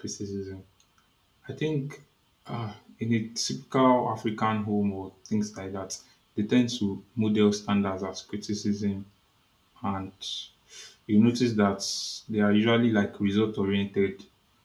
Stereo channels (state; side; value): identical; both; correlation 1.00